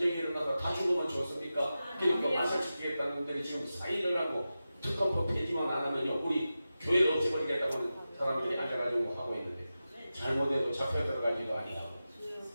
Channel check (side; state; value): both; inverted; correlation -0.93